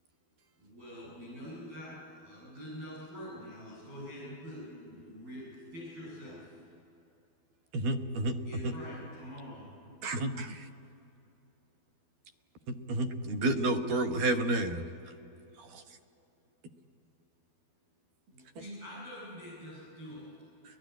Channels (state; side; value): late; left; 12 ms